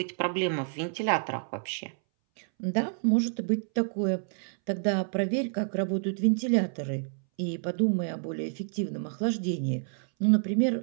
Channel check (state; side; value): silent; left; 59 dB below the other